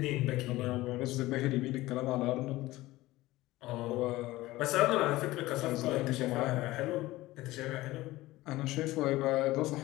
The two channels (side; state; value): right; quieter; 18.1 dB